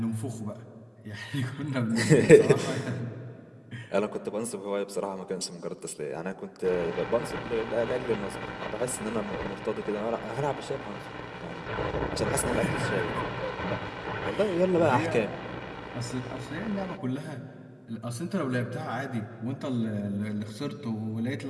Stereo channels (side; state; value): both; identical; correlation 1.00